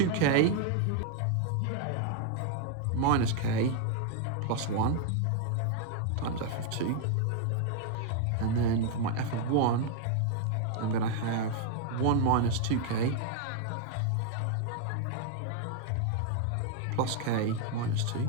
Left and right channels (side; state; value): both; different; correlation 0.00